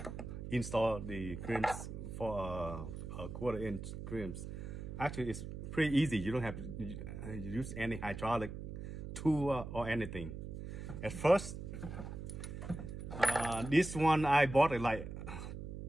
install the crimps for a 1/4 inch crimps. Actually, it's pretty easy. You don't have to use any hydraulic tool or anything. At first, this one I bought it like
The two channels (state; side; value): noise; right; hum, 8 dB below the sound